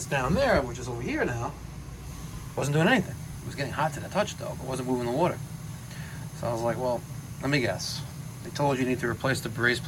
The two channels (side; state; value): both; identical; correlation 1.00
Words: down there, which is over here now, wasn't doing anything. It was getting hot to the touch though, but wasn't moving the water. So I was like, well, let me guess. They told you need to replace the brace